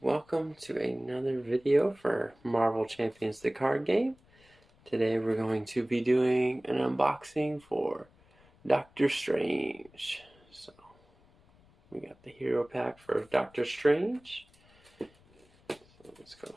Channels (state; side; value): noise; left; rumble, 30 dB below the sound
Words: welcome to another video for Marvel Champions the card game. Today we're going to be doing an unboxing for Doctor Strange. So we got the hero pack for Doctor Strange. So let's go